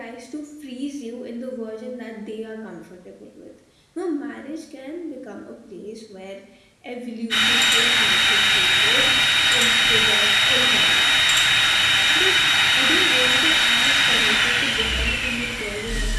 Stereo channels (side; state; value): both; identical; correlation 1.00